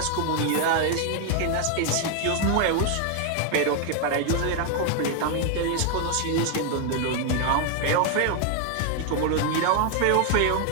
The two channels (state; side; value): different; both; correlation 0.01